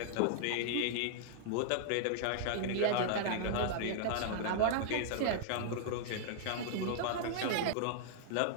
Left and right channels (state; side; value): different; both; correlation -0.01